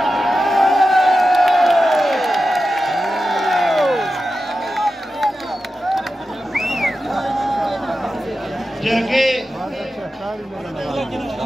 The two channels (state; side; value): normal; both; correlation 0.92